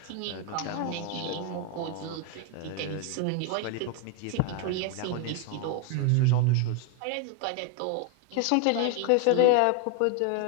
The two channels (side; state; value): both; different; correlation 0.01